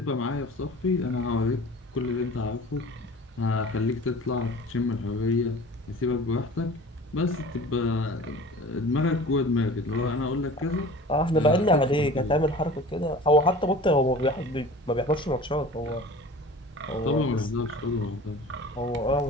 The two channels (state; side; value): normal; both; correlation 0.42